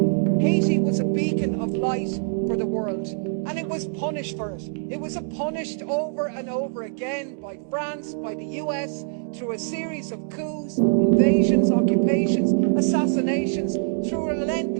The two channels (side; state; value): left; silent; digital silence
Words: Haiti was a beacon of light for the world, and it was punished for it. It was punished over and over again by France, by the US, through a series of coups, invasions, occupations, assassinations, through